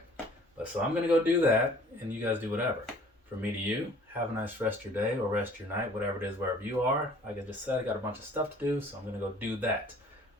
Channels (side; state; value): both; normal; correlation 0.53